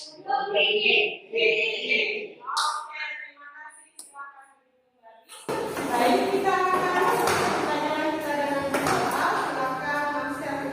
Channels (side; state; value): both; identical; correlation 1.00